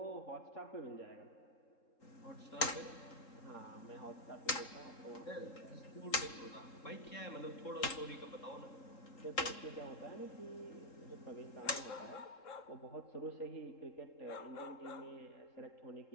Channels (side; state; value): right; late; 3.9 ms